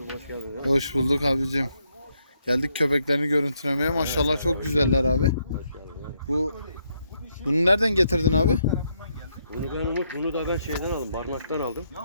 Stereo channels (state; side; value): inverted; both; correlation -0.77